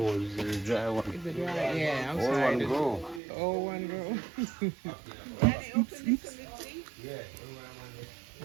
is the dry one? Is it dry? Yeah, I'm All sorry. one grow. The old one girl.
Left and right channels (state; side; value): drops out; left; at 3.2 s